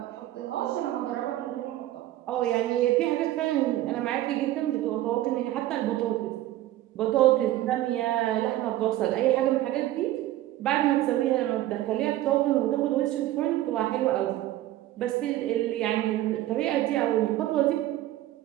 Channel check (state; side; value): quieter; left; 14.8 dB